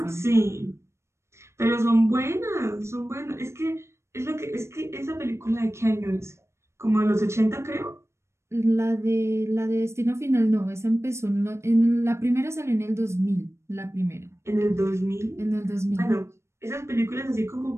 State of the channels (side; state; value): left; late; 0.13 ms